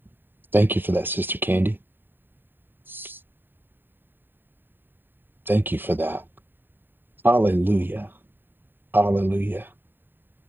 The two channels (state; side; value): late; left; 0.094 ms